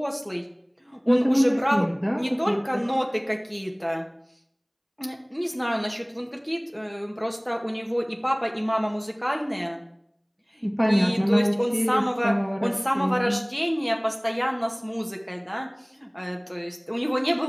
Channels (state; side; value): identical; both; correlation 1.00